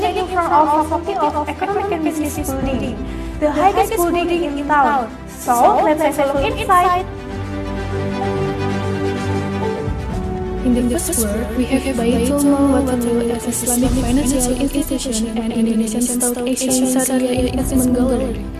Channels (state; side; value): identical; both; correlation 1.00